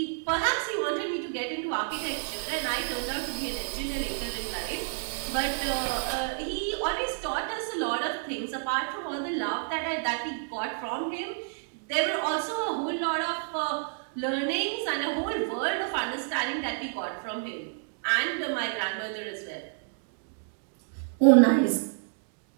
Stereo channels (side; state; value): left; silent; digital silence